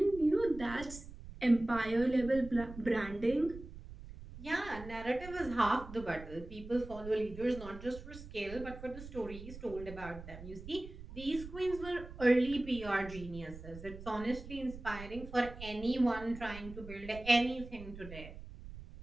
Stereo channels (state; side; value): noise; right; rumble, 13 dB below the sound